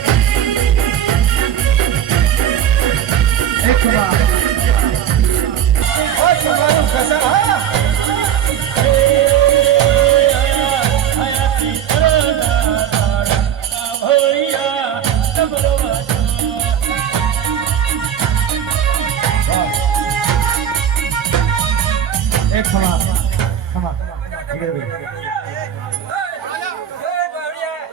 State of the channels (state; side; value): quieter; left; 9.6 dB